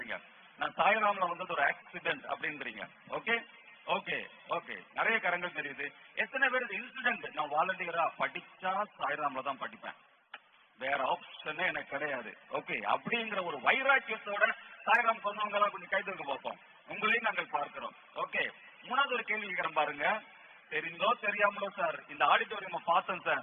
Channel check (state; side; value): identical; both; correlation 1.00